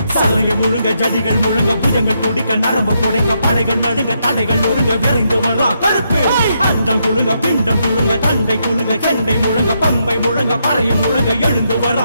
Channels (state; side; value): inverted; both; correlation -0.79